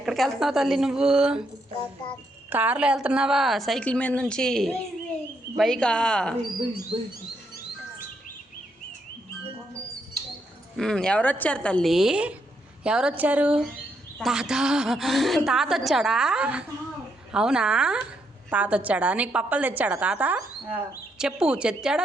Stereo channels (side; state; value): both; normal; correlation 0.77